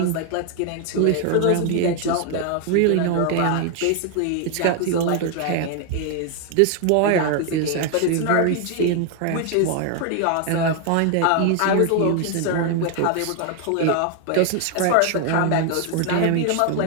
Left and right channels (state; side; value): different; both; correlation 0.00